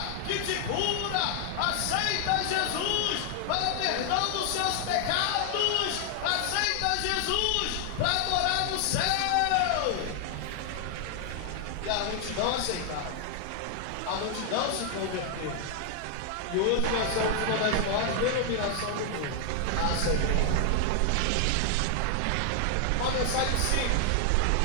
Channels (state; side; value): different; both; correlation 0.00